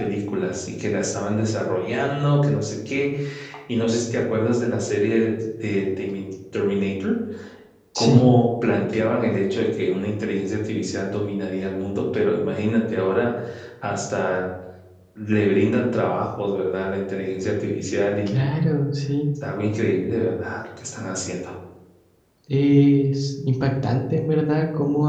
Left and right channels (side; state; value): both; identical; correlation 1.00